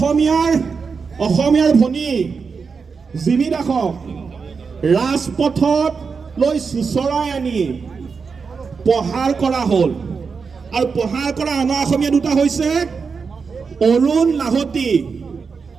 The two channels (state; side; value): quieter; left; 5.3 dB